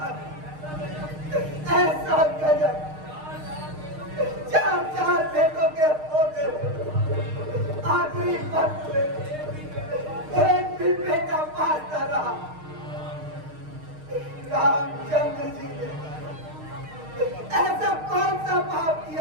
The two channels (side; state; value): left; late; 6.5 ms